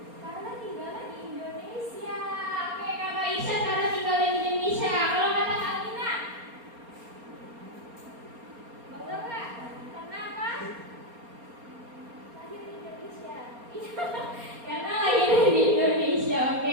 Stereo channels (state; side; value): late; left; 4.3 ms